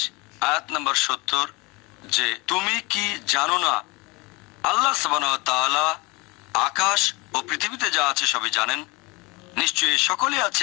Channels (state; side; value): quieter; right; 25.7 dB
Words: আয়াত নম্বর 70, যে তুমি কি জানো না আল্লাহ সুবহানাহু ওয়া তাআলা আকাশ ও পৃথিবীতে যা আছে সবই জানেন। নিশ্চয়ই সকলে